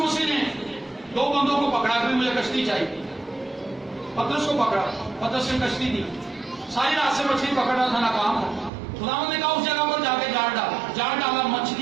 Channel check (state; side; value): drops out; left; at 8.7 s